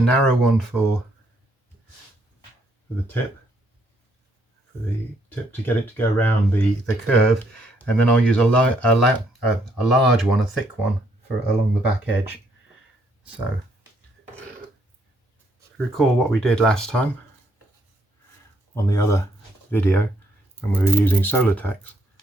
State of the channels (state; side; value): normal; both; correlation 0.71